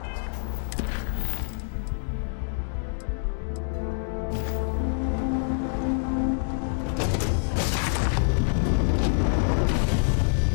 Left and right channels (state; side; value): silent; right; digital silence